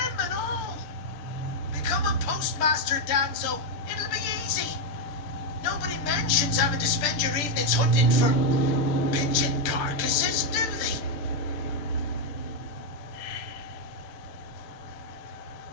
and all. Become a postmaster, Danzo. It'll be easy. Nobody mentions having to spend your evenings hunting for pigeon carcasses, do they?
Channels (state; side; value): late; right; 6.8 ms